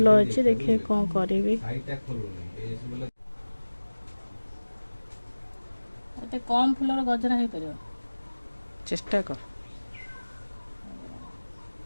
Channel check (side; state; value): both; inverted; correlation -1.00